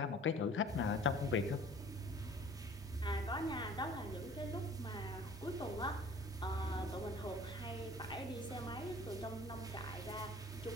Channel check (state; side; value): normal; both; correlation 0.49